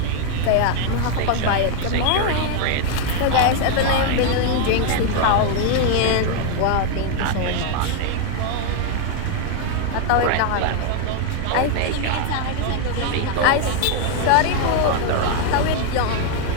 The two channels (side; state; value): both; different; correlation 0.00